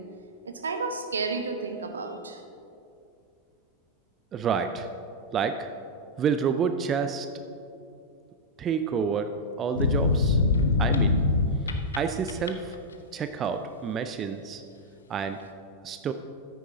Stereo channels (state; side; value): normal; both; correlation -0.06